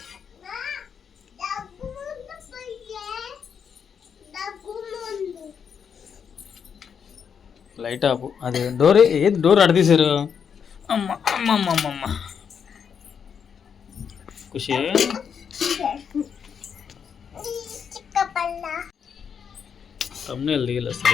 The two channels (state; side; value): quieter; right; 7.1 dB